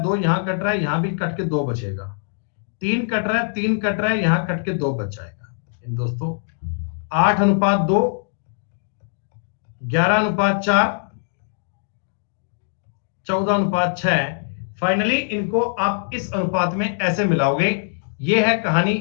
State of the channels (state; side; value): silent; right; digital silence